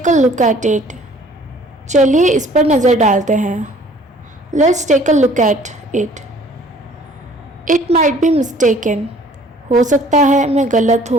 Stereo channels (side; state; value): both; normal; correlation 0.54